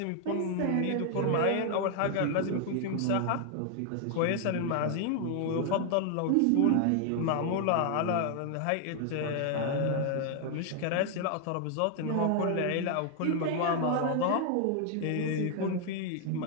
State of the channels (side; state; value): both; different; correlation 0.00